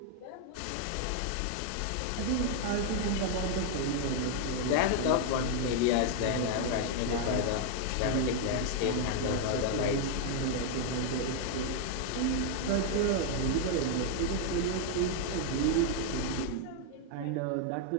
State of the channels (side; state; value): both; different; correlation 0.00